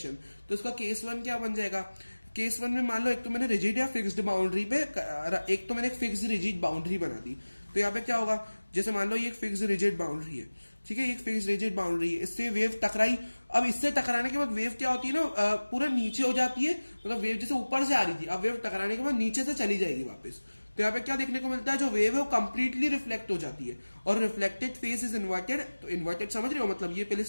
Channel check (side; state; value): both; inverted; correlation -1.00